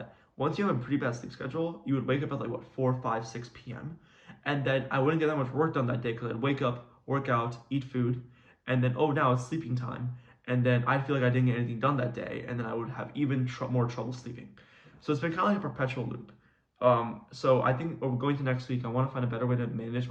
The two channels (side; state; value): both; identical; correlation 1.00